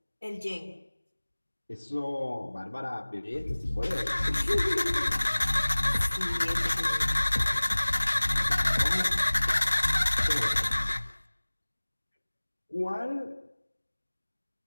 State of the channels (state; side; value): inverted; both; correlation -1.00